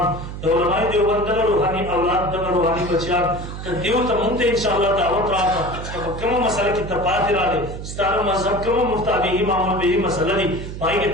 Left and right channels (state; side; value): noise; right; hum, 9 dB below the sound